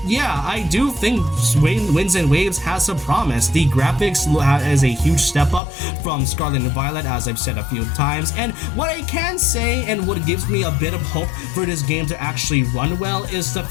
yeah, I do think Winds and Waves has some promise. The graphics is a huge step up from Scarlet and Violet, as I've said a few times, and what I can say and what gives me a bit of hope for this game to actually run well is the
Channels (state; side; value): drops out; right; at 5.6 s